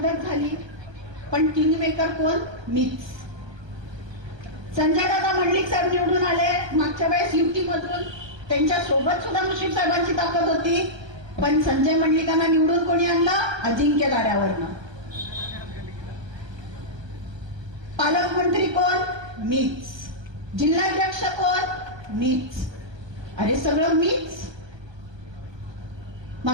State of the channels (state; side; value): late; left; 1.3 ms